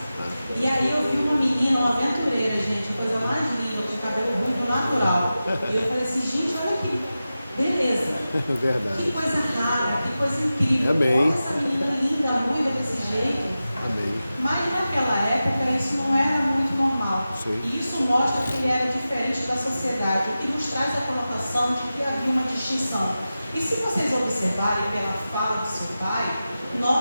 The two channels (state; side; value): inverted; both; correlation -0.94